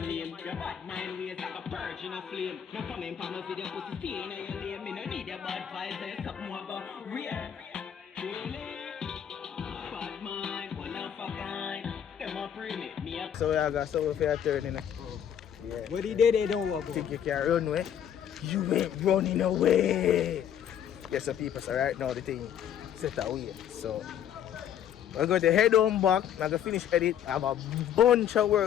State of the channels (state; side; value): quieter; right; 9.4 dB